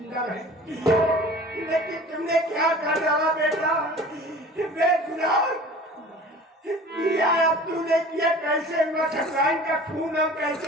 रहे। लेकिन तुमने क्या कर डाला बेटा, बेगुनाह किया तूने किया। कैसे हुआ ठकुराइन का खून, और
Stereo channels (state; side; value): normal; both; correlation 0.43